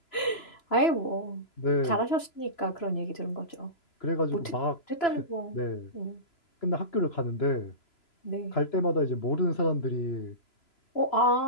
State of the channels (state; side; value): late; right; 3.0 ms